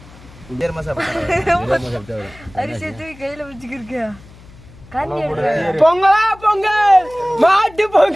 கையில வச்சுக்கிருக்கியா? பொங்கலா பொங்கல், மாட்டு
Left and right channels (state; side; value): noise; left; hum, 22 dB below the sound